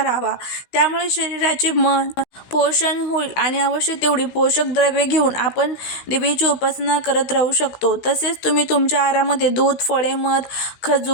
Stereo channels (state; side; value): late; right; 16 ms